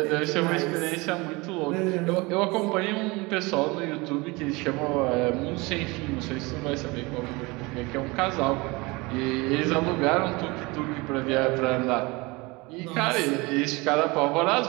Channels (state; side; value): quieter; left; 24.6 dB